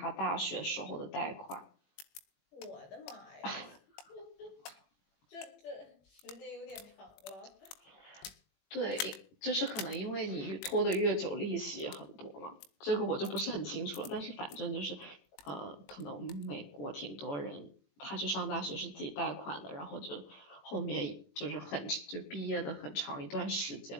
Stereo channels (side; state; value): right; late; 21 ms